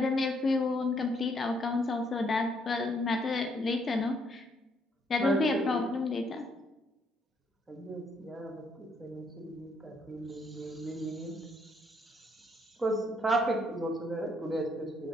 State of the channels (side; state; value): both; normal; correlation 0.71